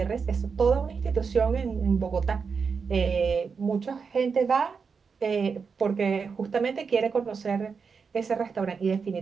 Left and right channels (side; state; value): left; quieter; 5.5 dB